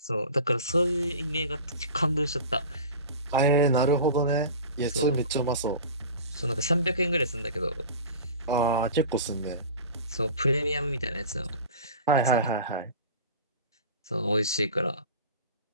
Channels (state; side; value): inverted; both; correlation -0.37